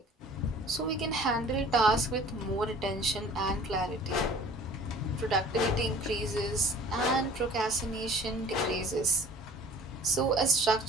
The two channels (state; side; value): normal; both; correlation 0.47